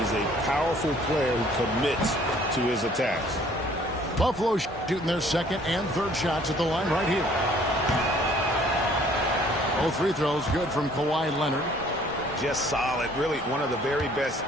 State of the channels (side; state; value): both; normal; correlation 0.58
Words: a powerful player who commits to his attacks. Buffalo shooting their second and third shots at the line right here. Both free throws good from Kawhi Leonard. Just solid. Really one of the very best